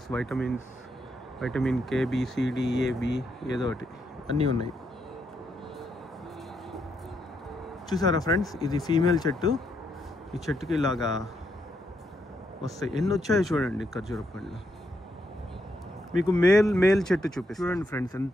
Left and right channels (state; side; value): normal; both; correlation 0.78